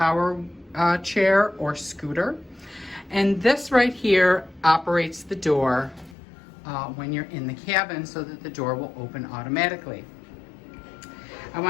chair or scooter. And this right here operates the door when you're in the cabin so that the door will open automatically. I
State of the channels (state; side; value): drops out; right; at 6.2 s